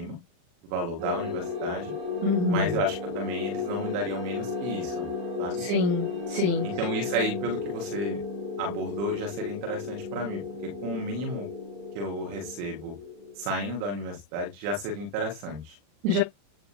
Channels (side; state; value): left; late; 40 ms